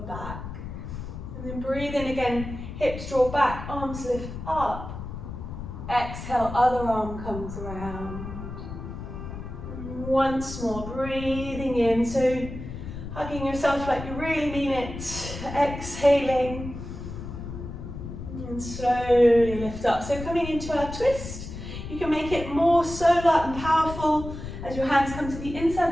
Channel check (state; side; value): noise; left; rumble, 9 dB below the sound